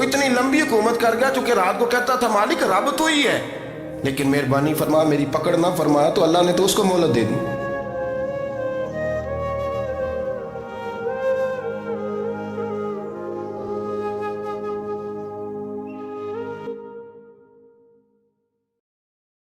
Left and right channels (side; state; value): both; identical; correlation 1.00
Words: اتنی لمبی حکومت کر گیا چونکہ رات کو کہتا تھا مالک رب تو ہی ہے, لیکن مہربانی فرما, میری پکڑ نہ فرمایا, تو اللہ نے تو اس کو مہلت دے دی.